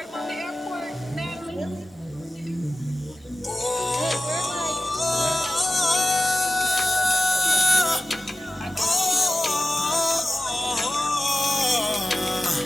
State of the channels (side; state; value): both; normal; correlation 0.94